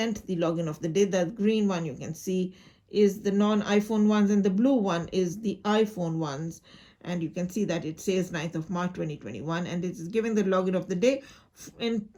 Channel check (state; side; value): identical; both; correlation 1.00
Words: the login of the day. The green one you can see is the non-iPhone ones, and the blue one is the iPhone ones. And you can see that it says 9th of March 2021, and it is giving the login of the day in